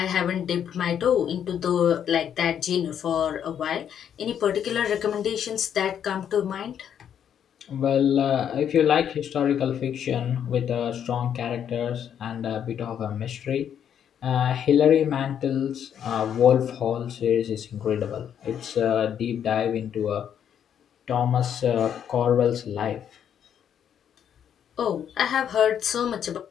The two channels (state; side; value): quieter; right; 9.0 dB